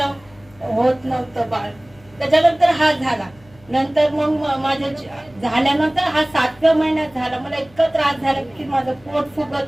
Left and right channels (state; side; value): noise; left; hum, 27 dB below the sound